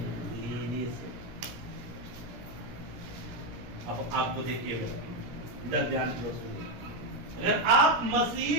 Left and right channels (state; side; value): late; left; 17 ms